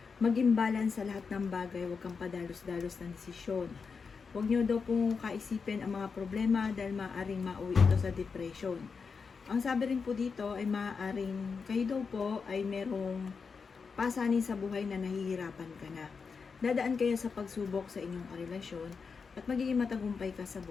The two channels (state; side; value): quieter; right; 5.3 dB